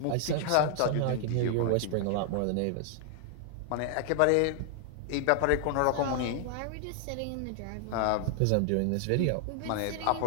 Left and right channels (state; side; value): different; both; correlation 0.00